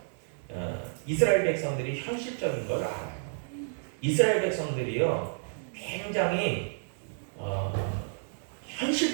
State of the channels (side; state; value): left; silent; 57 dB below the other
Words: 이스라엘 백성들이 현실적인 걸 알아요. 이스라엘 백성들이요, 굉장히